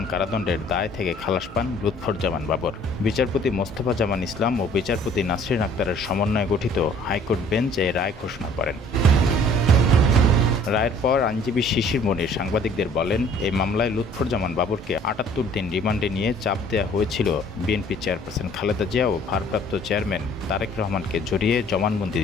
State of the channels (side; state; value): both; normal; correlation 0.55